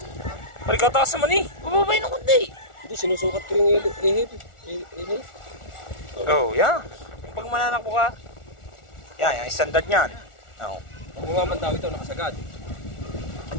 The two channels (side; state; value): right; late; 1.4 ms